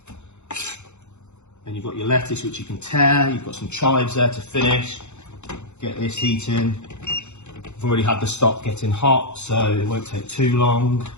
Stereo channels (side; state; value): right; late; 0.83 ms